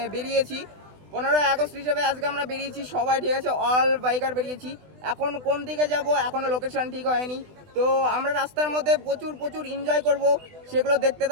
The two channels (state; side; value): late; left; 20 ms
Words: বেরিয়েছি। 15ই আগস্ট হিসেবে আজকে আমরা বেরিয়েছি সবাই, ঠিক আছে, অল বাইকার বেরিয়েছি। এখন কোন দিকে যাব এখনও লোকেশন ঠিক হয়নি। তো আমরা রাস্তার মধ্যে প্রচুর প্রচুর এনজয় করব, সেগুলো দেখতে